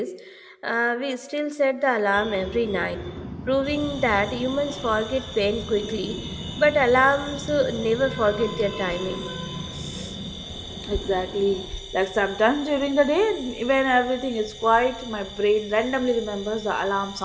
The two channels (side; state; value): both; identical; correlation 1.00